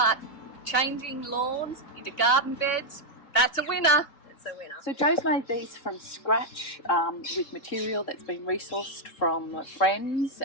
changing lawns into garden beds, that's a winner. A winner. So Jo's made these from scratch with material that's been resourced from friends.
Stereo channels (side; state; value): right; late; 3.5 ms